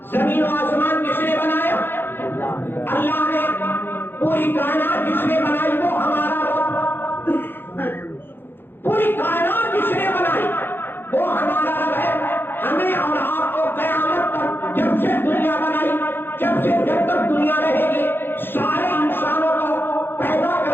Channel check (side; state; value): right; late; 0.10 ms